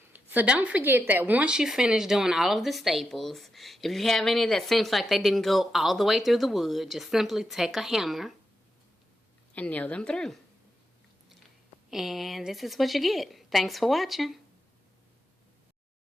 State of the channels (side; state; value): both; normal; correlation 0.86